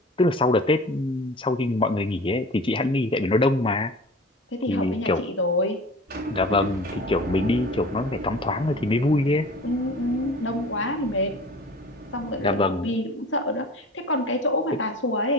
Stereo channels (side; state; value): both; normal; correlation 0.40